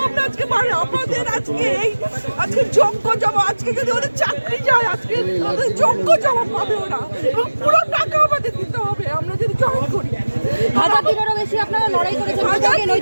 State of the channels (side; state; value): both; inverted; correlation -1.00